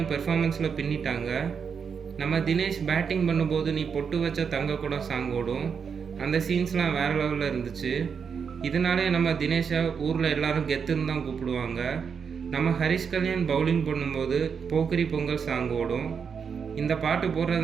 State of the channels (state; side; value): quieter; left; 6.4 dB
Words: பெர்ஃபார்மன்ஸில் பின்னிட்டாங்க. நம்ம தினேஷ் பேட்டிங் பண்ணும்போது நீ பொட்டு வச்ச தங்க கூட சாங் ஓடும். அந்த சீன்ஸ்லாம் வேறு லெவலில் இருந்துச்சு. இதனாலே நம்ம தினேஷை ஊரில் எல்லாரும் கெத்துன்னு தான் கூப்பிடுவாங்க. நம்ம ஹரிஷ் கல்யாண் பவுலிங் பண்ணும்போது போக்கிரி பொங்கல் சாங் ஓடும். இந்த பாட்டு